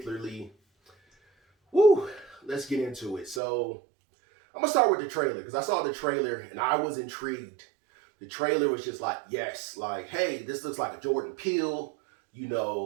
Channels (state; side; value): drops out; left; at 3.4 s